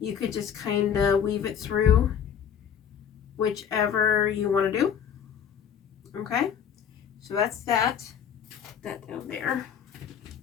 you could just kind of weave it through whichever you want to do. Okay, so that's that down there.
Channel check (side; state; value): right; quieter; 8.2 dB